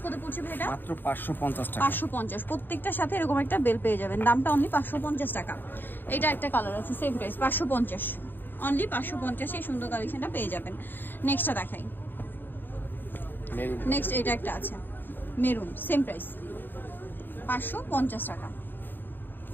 কত পড়ছে ভাই? এটা মাত্র 550 টাকা। 550, প্রত্যেকটার সাথে এরকম একটা বেল পেয়ে যাবেন। দামটা অনলি 550 টাকা। এটা একটা কালার আছে, সেম প্রাইস 550, অনলি 550 এই সুন্দর কালেকশনটা পেয়ে যাবেন। নেক্সটটা দেখাই। নেক্সট এটা একটা আছে মেরুন, সেম প্রাইস 550 টাকা।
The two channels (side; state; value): right; late; 0.093 ms